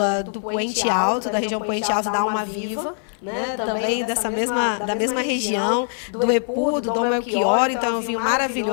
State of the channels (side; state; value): right; silent; 64 dB below the other